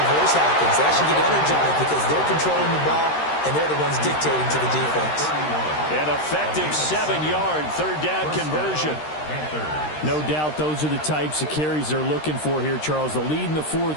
happens. They actually get energized because they're controlling the ball, and they're the ones dictating to the defense. An effective 7-yard third down conversion. No doubt those are the types of carries they're looking for here, Charles. The lead in the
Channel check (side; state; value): right; late; 13 ms